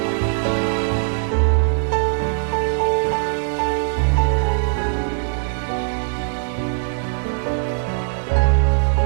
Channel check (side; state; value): left; silent; digital silence